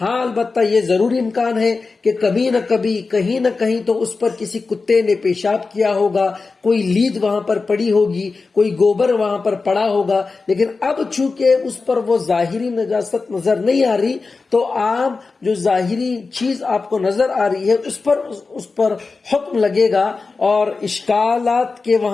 ہاں البتہ یہ ضروری امکان ہے کہ کبھی نہ کبھی کہیں نہ کہیں تو اس پر کسی کتے نے پیشاب کیا ہوگا، کوئی لید وہاں پر پڑی ہوگی، کوئی گوبر وہاں پر پڑا ہوگا، لیکن اب چونکہ اس پر وہ ظاہری نجاست نظر نہیں آ رہی تو عام جو ظاہری چیز آپ کو نظر آ رہی ہے اس پر حکم لگے گا اور اشکالات کے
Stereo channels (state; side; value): quieter; right; 4.1 dB